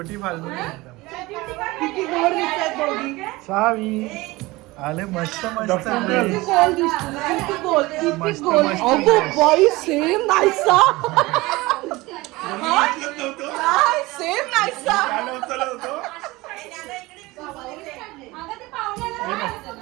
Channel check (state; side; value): quieter; left; 21.0 dB